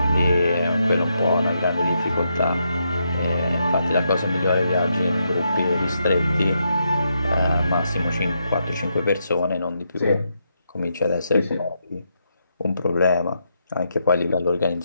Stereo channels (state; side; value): inverted; both; correlation -0.81